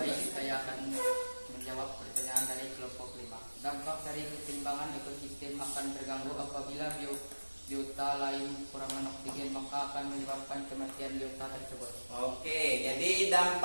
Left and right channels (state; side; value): inverted; both; correlation -1.00